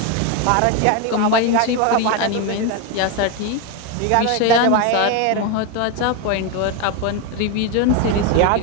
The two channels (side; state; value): both; different; correlation 0.02